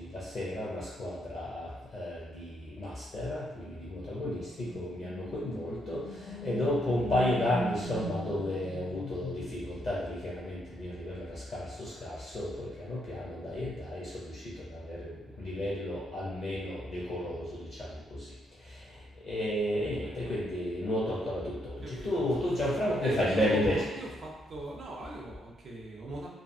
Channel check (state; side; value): normal; both; correlation 0.76